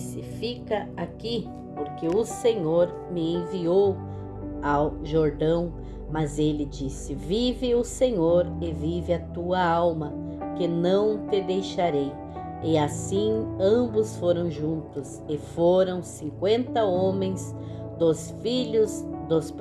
Fica aqui, porque o Senhor me enviou ao Jordão. Mas ele disse: Vive o Senhor e vive a tua alma, que não te deixarei. E assim ambos foram juntos, e foram 50 homens dos filhos dos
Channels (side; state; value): both; identical; correlation 1.00